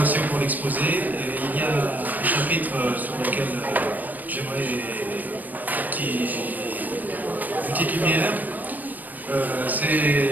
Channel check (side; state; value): left; late; 0.085 ms